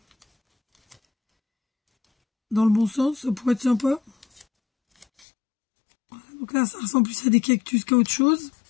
Dans le bon sens, ça pourrait être sympa. Voilà. Donc là, ça ressemble plus à des cactus qu'à autre chose.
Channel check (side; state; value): right; drops out; at 5.1 s